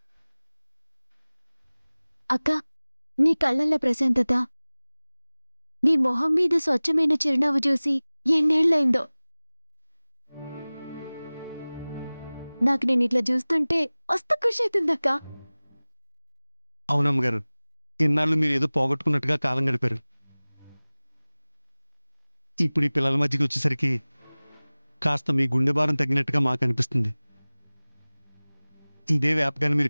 అక్క, నీ కళ్ళల్లో ప్రశాంతత, నీ మొహం మీద స్వచ్ఛమైన చిరునవ్వు చూసి ఎన్నేళ్లైందో. నాకు నేను ఇట్లా చూస్తుంటే మస్తు ఖుషి అవుతుందక్క. అవునమ్మ గారు, ఇన్నాళ్ళు మీరు ఏదో పోగొట్టుకున్నట్టుగా కాలం గడిపారు. ఇప్పుడు ఈ పిల్లల మధ్యకి వచ్చేసరికి కాస్త మీ గుండె భారం తగ్గినట్టుగా మాకు అనిపిస్తుంది. ఇదే వ్యాపకాన్ని మీరు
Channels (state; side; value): inverted; both; correlation -1.00